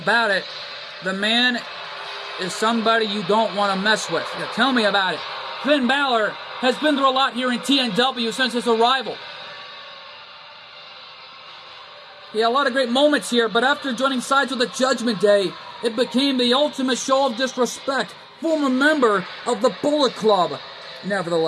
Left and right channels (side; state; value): both; identical; correlation 1.00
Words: it, the man is somebody you don't want to mess with. Yeah, tell me about it. Finn Balor has been through a lot here in TNW since his arrival. He had a lot of great moments here, but after joining sides with the Judgment Day, it became the ultimate show of disrespect. Former member of the Bullet Club,